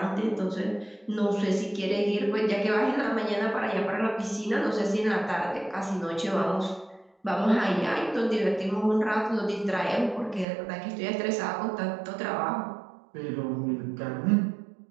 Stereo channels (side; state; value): left; drops out; at 10.5 s